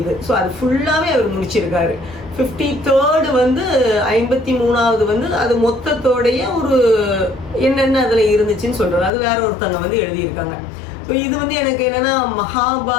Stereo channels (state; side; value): drops out; right; at 9.1 s